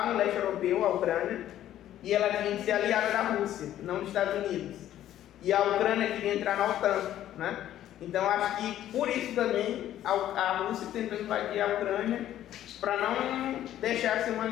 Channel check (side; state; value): right; quieter; 12.2 dB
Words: no leste europeu, a Ucrânia, e ela tinha que ser aliada da Rússia, não dos Estados Unidos. E a Ucrânia queria entrar na OTAN, né? Então acho que por isso também a Rússia tentou invadir a Ucrânia para não deixar ser um